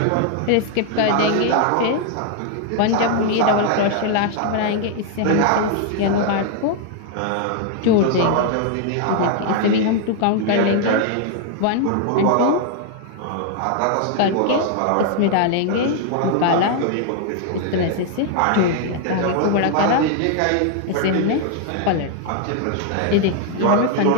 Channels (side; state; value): both; different; correlation 0.00